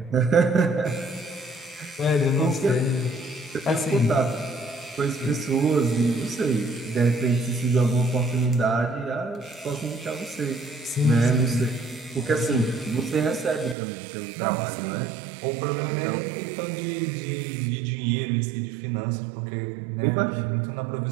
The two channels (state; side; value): drops out; left; at 13.8 s